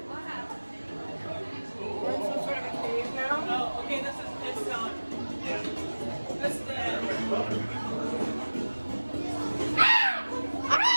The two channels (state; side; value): inverted; both; correlation -1.00